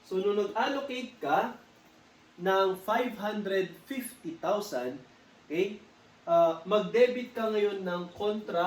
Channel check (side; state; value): both; identical; correlation 1.00